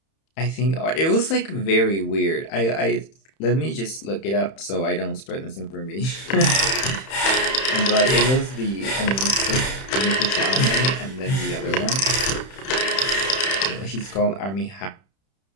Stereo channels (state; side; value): late; right; 31 ms